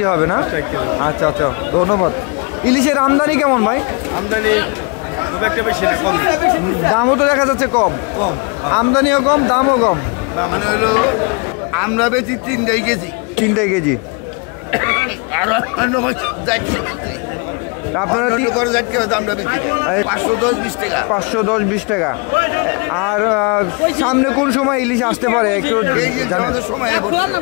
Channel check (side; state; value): right; quieter; 32.6 dB